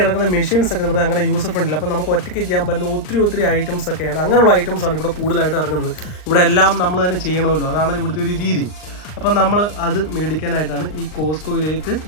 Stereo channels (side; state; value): right; late; 39 ms